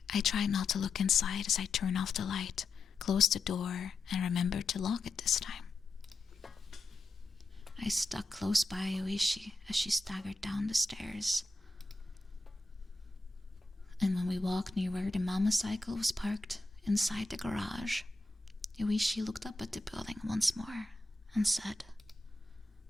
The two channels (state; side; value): quieter; right; 3.2 dB